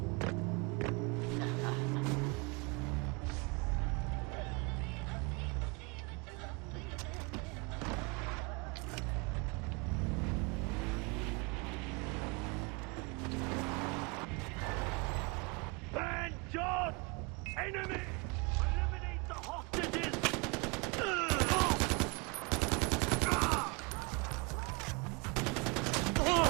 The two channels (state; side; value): quieter; left; 29.9 dB